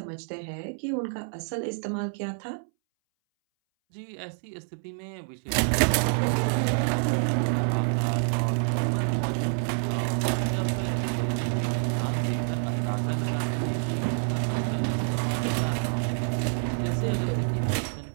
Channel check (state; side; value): silent; left; 60 dB below the other